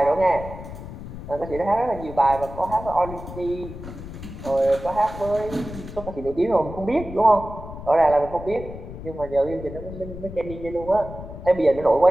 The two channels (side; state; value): left; noise; rumble, 12 dB below the sound